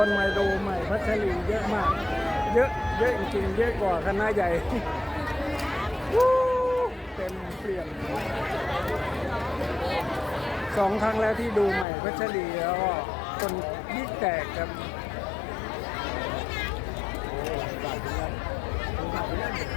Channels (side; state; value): right; drops out; at 11.9 s